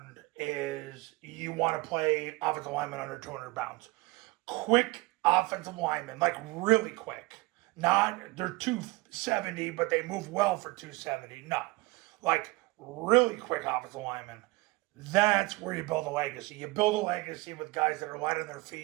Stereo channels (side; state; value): left; quieter; 22.8 dB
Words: is you want to play offensive linemen under 200 pounds. Quick offensive linemen, like really quick. Not, they're 270, but they move well for 270. No. Like really quick offensive linemen. That's where you build a legacy. You build a legacy with guys that are light on their